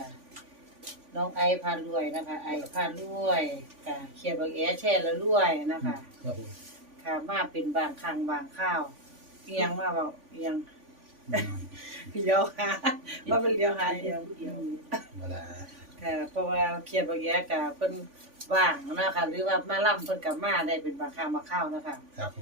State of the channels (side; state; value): left; late; 3.5 ms